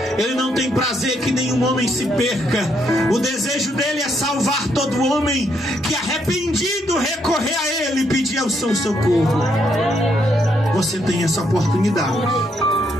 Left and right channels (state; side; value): normal; both; correlation 0.75